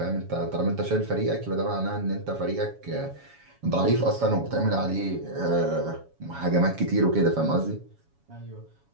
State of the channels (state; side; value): late; left; 7.2 ms